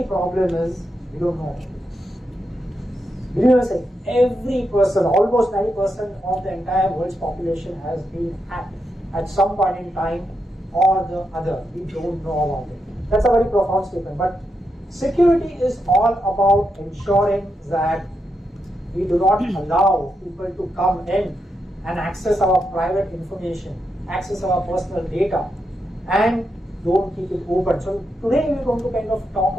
problem is we don't know. Believe me, say every person, almost 90% of the entire world's population has been hacked at some point in time or the other. We don't know about it. That's a very profound statement. But security is all about ensuring that we do not allow people to come in and access our private information, access our personal data, and don't keep it open. So today we're going to kind of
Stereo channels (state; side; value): normal; both; correlation 0.84